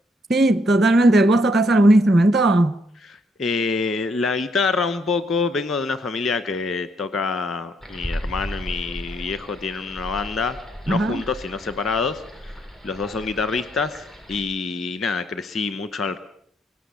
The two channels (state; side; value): normal; both; correlation 0.73